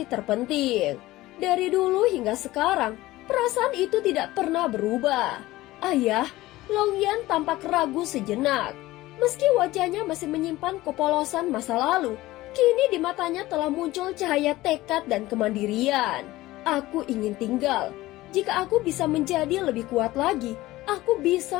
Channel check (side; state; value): right; quieter; 17.6 dB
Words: terpenting. Dari dulu hingga sekarang, perasaan itu tidak pernah berubah. Ayah, Longyan tampak ragu sejenak. Meski wajahnya masih menyimpan kepolosan masa lalu, kini di matanya telah muncul cahaya tekad dan kemandirian. Aku ingin tinggal. Jika aku bisa menjadi lebih kuat lagi, aku